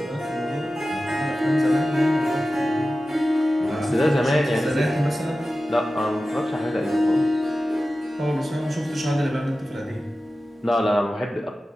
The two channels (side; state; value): both; normal; correlation 0.95